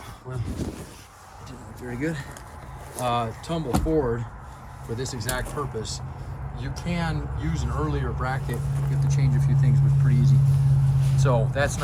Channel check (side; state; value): both; identical; correlation 1.00